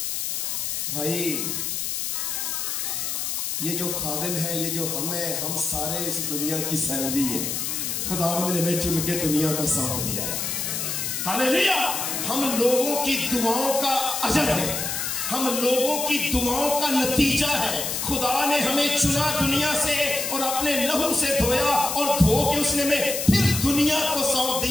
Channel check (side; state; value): left; noise; hiss, 2 dB below the sound